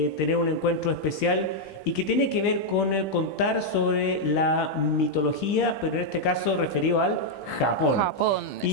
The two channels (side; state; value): right; late; 16 ms